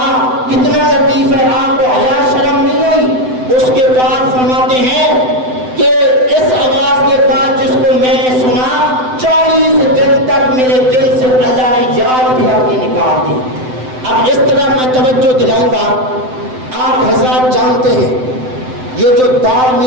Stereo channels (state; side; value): late; left; 7.9 ms